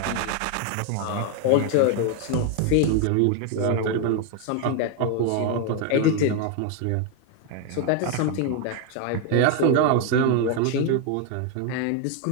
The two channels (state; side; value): different; both; correlation 0.01